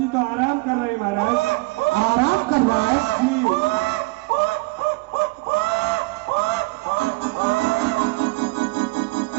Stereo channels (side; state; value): left; quieter; 24.5 dB